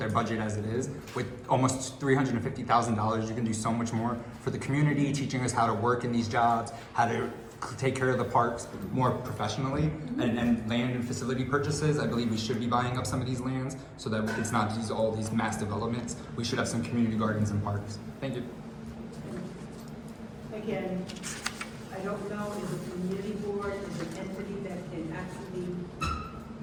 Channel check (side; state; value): both; identical; correlation 1.00